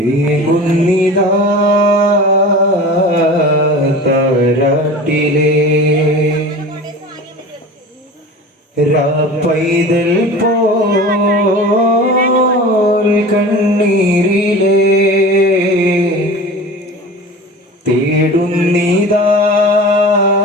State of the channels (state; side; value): normal; both; correlation 0.36